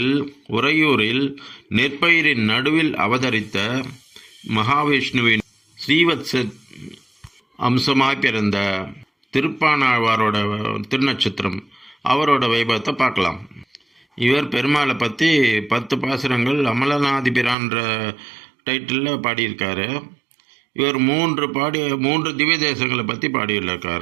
உறையூரில் நெற்பயிரின் நடுவில் அவதரித்த மகாவிஷ்ணுவின் ஸ்ரீவத்ச அம்சமாய் பிறந்த திருப்பானாழ்வாரோட திருநட்சத்திரம். அவரோட வைபவத்தை பார்க்கலாம். இவர் பெருமாளை பற்றி 10 பாசுரங்கள் அமலநாதிபிரான்ற டைட்டிலில் பாடியிருக்காரு. இவர் 3 திவ்ய தேசங்களை பற்றி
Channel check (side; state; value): left; drops out; at 17.6 s